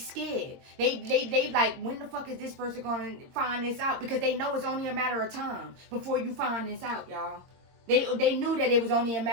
They like, when the fuck is this person going to find this out? Because they know it's only a matter of time before you find this out, y'all. They knew that it was only a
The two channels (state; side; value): late; left; 22 ms